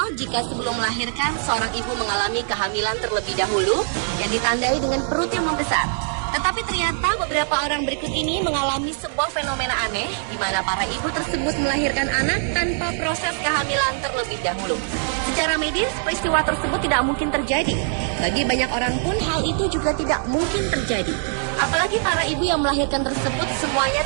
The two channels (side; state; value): left; silent; 60 dB below the other